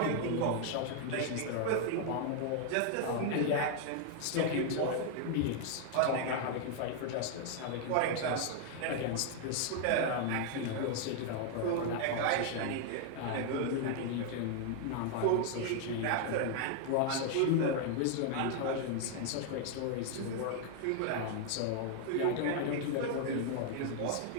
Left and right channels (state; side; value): different; both; correlation 0.00